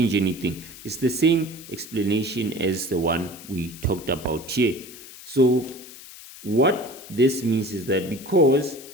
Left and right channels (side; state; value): left; noise; hiss, 17 dB below the sound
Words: anything. It's the same explanation as the one we talked about here. So what this means is that because